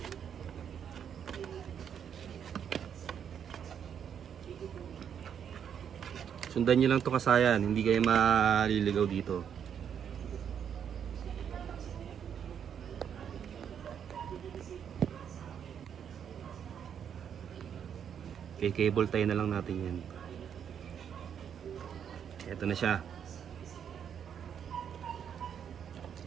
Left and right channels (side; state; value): left; quieter; 8.3 dB